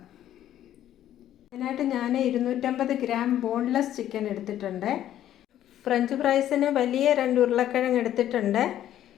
അതിനായിട്ട് ഞാൻ 250 ഗ്രാം ബോൺലെസ് ചിക്കൻ എടുത്തിട്ടുണ്ട്. ഫ്രഞ്ച് ഫ്രൈസിന് വലിയ 2 ഉരുളക്കിഴങ്ങ് എടുത്തിട്ടുണ്ട്.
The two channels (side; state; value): right; quieter; 11.8 dB